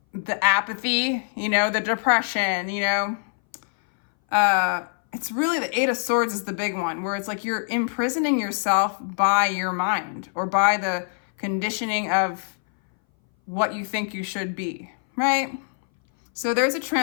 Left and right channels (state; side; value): silent; right; 60 dB below the other